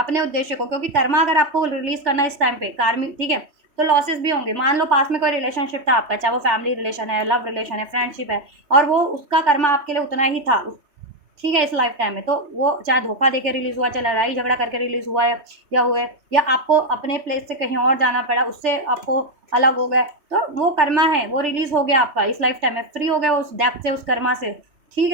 उद्देश्य को, क्योंकि कर्मा अगर आपको रिलीज करना है इस टाइम पे कार्मिक, ठीक है, तो लॉसेस भी होंगे। मान लो पास में कोई रिलेशनशिप था आपका, चाहे वो फैमिली रिलेशन है, लव रिलेशन है, फ्रेंडशिप है, और वो उसका कर्मा आपके लिए उतना ही था, ठीक है, इस लाइफ टाइम में, तो वो चाहे धोखा देके रिलीज हुआ, चाहे लड़ाई झगड़ा करके रिलीज हुआ है, या हुए, या आपको अपने प्लेस से कहीं और जाना पड़ा, उससे आपको अलग हो गए, तो वो कर्मा है, वो रिलीज हो गया आपका इस लाइफ टाइम में, फ्री हो गया उस डेप्थ से, उस कर्मा से। ठीक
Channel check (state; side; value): late; left; 3.1 ms